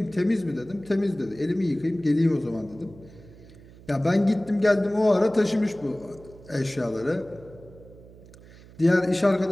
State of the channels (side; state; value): right; noise; hum, 21 dB below the sound